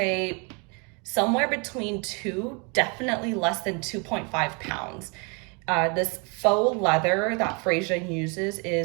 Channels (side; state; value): left; quieter; 32.9 dB